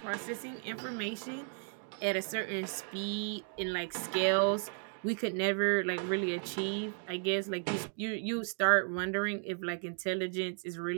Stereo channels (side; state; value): left; silent; 55 dB below the other